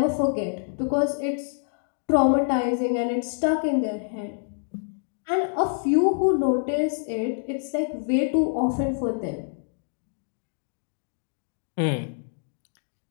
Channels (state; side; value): silent; right; digital silence